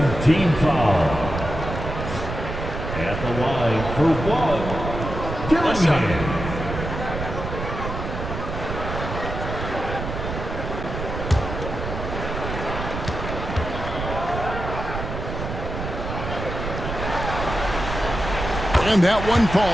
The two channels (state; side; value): noise; right; rumble, 6 dB below the sound